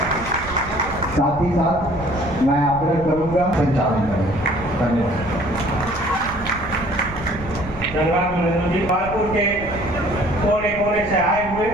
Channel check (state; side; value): noise; right; rumble, 12 dB below the sound